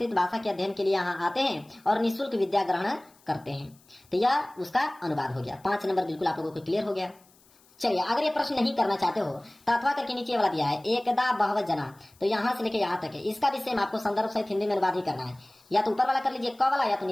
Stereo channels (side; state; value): left; noise; hiss, 30 dB below the sound